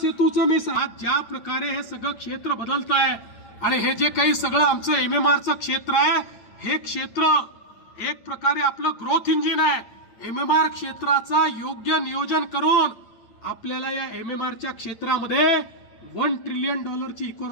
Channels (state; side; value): late; right; 8.9 ms